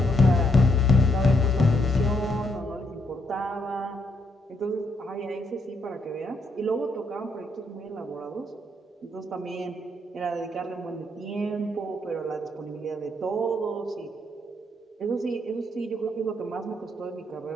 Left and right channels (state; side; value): normal; both; correlation 0.75